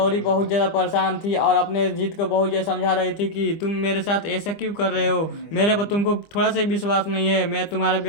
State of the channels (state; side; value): late; right; 25 ms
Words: बहुत ज्यादा परेशान थी और अपने जीत को बहुत ज्यादा समझा रही थी कि तुम मेरे साथ ऐसा क्यों कर रहे हो, मेरे पर तुमको थोड़ा सा ही विश्वास नहीं है, मैं तुम्हारे